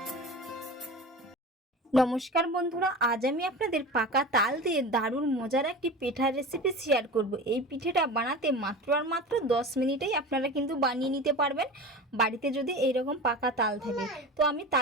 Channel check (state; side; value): normal; both; correlation 0.32